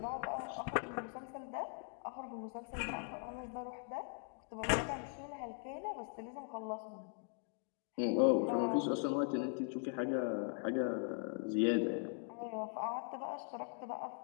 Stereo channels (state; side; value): silent; right; 51 dB below the other